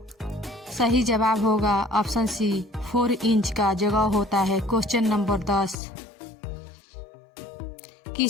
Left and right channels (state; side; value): drops out; right; at 5.8 s